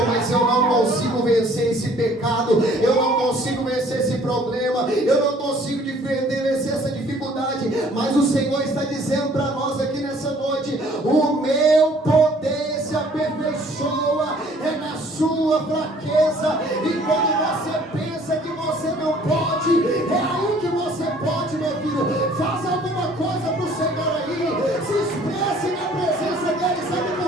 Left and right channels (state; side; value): normal; both; correlation 0.56